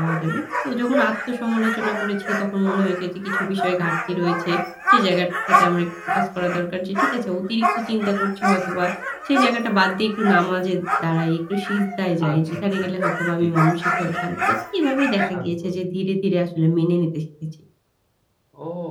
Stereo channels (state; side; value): identical; both; correlation 1.00